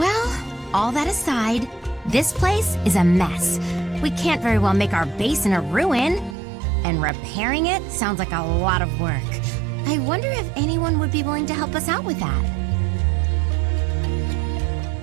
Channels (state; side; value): drops out; left; at 6.4 s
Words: all that aside, this place is a mess. We can't very well make our base in a ruin. And repairing it sounds like a lot of work. I wonder if anyone would be willing to help us out with that.